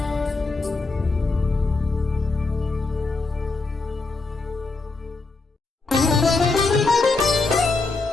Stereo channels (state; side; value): quieter; right; 3.7 dB